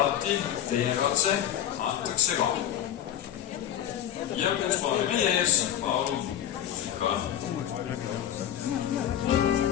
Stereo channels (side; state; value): right; quieter; 11.0 dB